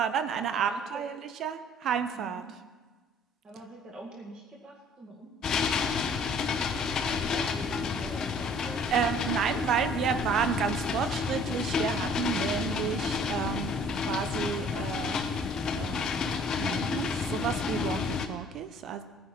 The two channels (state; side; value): normal; both; correlation 0.54